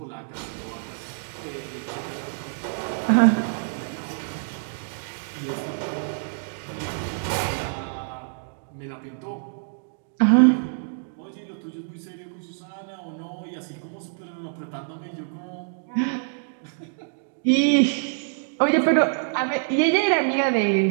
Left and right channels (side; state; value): left; silent; digital silence